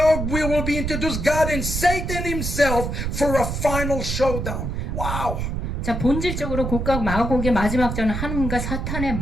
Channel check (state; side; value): noise; right; rumble, 3 dB below the sound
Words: we will be introduced God and Satan himself for a final showdown. Wow. 자, 본질적으로 곡각 마곡의 마지막 전은 하나님과 사탄의